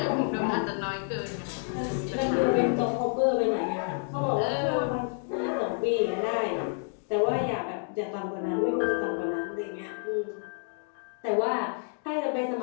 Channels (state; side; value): silent; right; 58 dB below the other